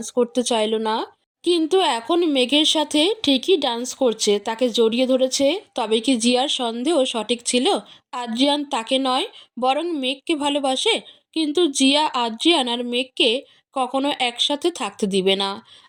করতে চাইল না, কিন্তু এখন মেঘের সাথে ঠিকই ডান্স করছে, তাকে জড়িয়ে ধরেছে। তবে কি জিয়ার সন্দেহ সঠিক ছিল? আদ্রিয়ান তাকে নয়, বরং মেঘকে ভালোবাসে। কিন্তু জিয়া আদ্রিয়ান আর মেঘকে কখনো একসাথে থাকতে দিবে না।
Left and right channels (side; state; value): both; identical; correlation 1.00